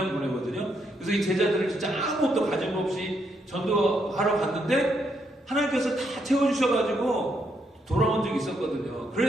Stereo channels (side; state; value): both; normal; correlation 0.77